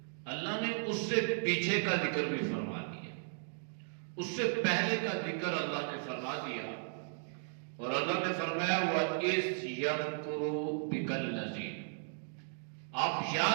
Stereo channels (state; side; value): silent; left; digital silence